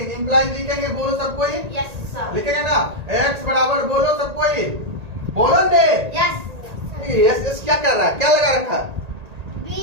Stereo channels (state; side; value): late; left; 1.8 ms